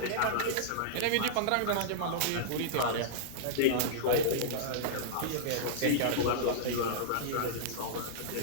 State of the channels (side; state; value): both; different; correlation -0.02